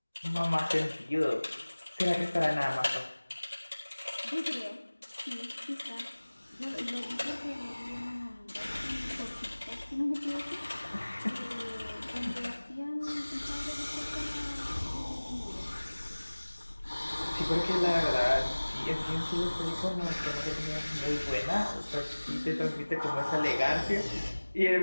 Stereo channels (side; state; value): both; inverted; correlation -1.00